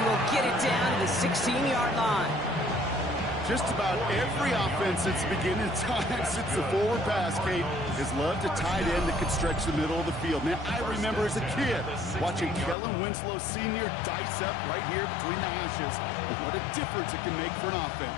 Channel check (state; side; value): drops out; right; at 12.8 s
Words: will get it down to the 16-yard line. Just about every offense since the beginning of time, since the forward pass, Kate, has loved a tight end that could stretch the middle of the field. Man, I remember as a kid watching Kellen Winslow Sr. dice up right here between the hashes. And what a difference it can make for an